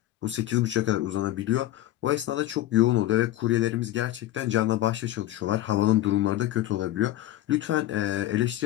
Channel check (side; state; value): right; quieter; 14.7 dB